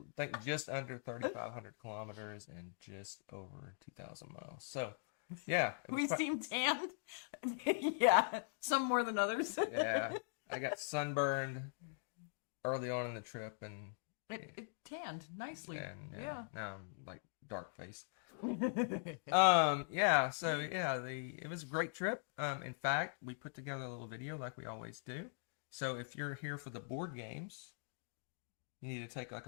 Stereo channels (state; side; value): silent; right; digital silence